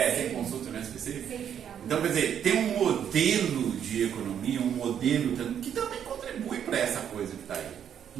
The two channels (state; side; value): quieter; left; 8.9 dB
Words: Sem consulta no SPC. Então, quer dizer, tem um modelo de economia, um modelo que também contribui para essa coisa que está aí.